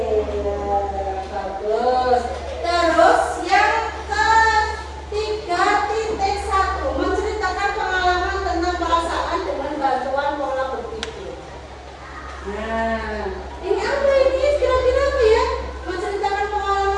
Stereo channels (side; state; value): both; identical; correlation 1.00